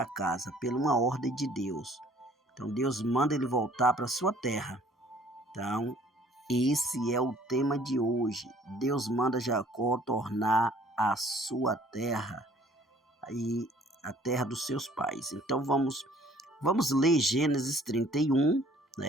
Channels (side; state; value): both; normal; correlation 0.56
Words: casa por uma ordem de Deus. Então Deus manda ele voltar para sua terra. Então esse é o tema de hoje. Deus manda Jacó tornar a sua terra e a terra dos seus pais. Então vamos ler Gênesis 31,